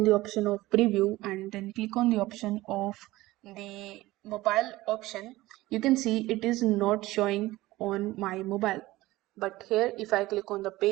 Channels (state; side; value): quieter; left; 18.2 dB